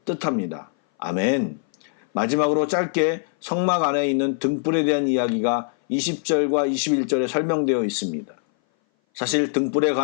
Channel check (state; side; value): silent; right; 59 dB below the other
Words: 뜻합니다. 아멘. 마지막으로 짧게 성막 안에 있는 등불에 대한 이야기가 20절과 21절에 설명되어 있습니다. 사실 등불에